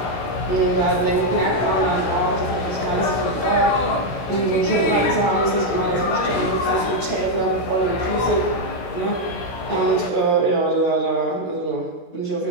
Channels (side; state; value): right; late; 17 ms